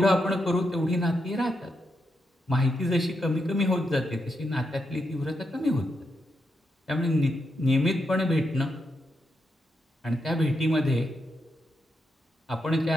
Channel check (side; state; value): both; normal; correlation 0.83